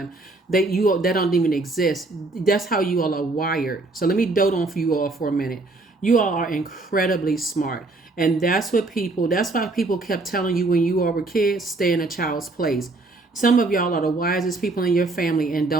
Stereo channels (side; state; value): left; quieter; 3.2 dB